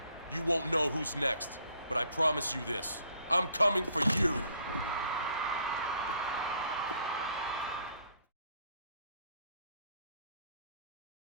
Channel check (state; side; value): inverted; both; correlation -0.63